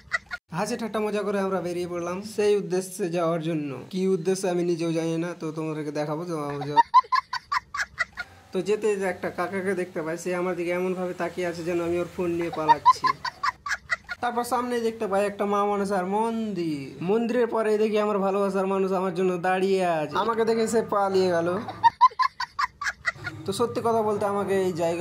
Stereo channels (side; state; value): both; identical; correlation 1.00